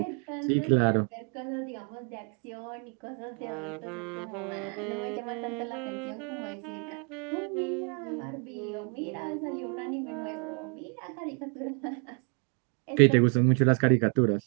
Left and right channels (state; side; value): quieter; left; 38.7 dB